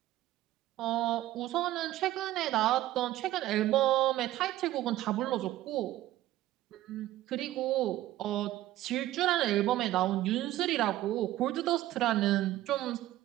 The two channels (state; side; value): quieter; left; 14.9 dB